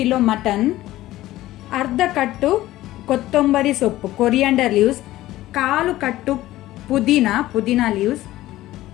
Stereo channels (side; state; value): right; quieter; 15.8 dB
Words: ಮಟನ್, ಅರ್ಧ ಕಟ್ಟು ಕೊತ್ತಂಬರಿ ಸೊಪ್ಪು ಕೊರಿಯಾಂಡರ್ ಲೀವ್ಸ್, ಕಾಲು ಕಟ್ಟು ಪುದೀನಾ ಲೀವ್ಸ್,